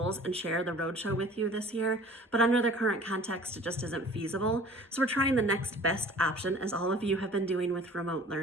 and share the Roadshow with you this year, but under the current context, it just isn't feasible. So we're trying the next best option, as all of you have been doing with remote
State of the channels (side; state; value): both; normal; correlation 0.47